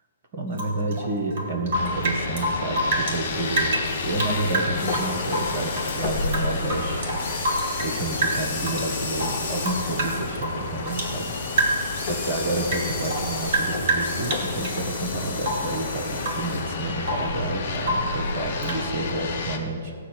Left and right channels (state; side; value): inverted; both; correlation -0.49